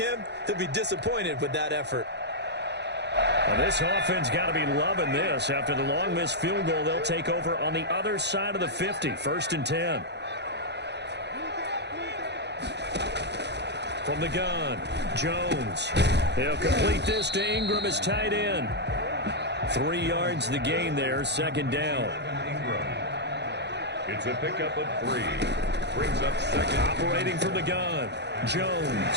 he'll be disappointed with that effort. Well, this offense got to be loving this. After the long missed field goal, they'll take over on the other side of the 50, 1st and 10. From the gun, Jones. He'll complete this to Ingram as tight end. 3 yards the gain there, 2nd down. It's a pickup of 3. Brings up 2nd. Operating from the gun, Jones.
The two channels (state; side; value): late; left; 0.50 ms